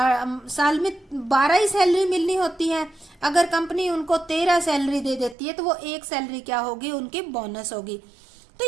में 12 ही सैलरी मिलनी होती है। अगर कंपनी उनको 13 सैलरी दे देती है तो वो एक सैलरी क्या होगी, उनकी बोनस होगी। तो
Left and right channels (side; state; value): left; drops out; at 5.4 s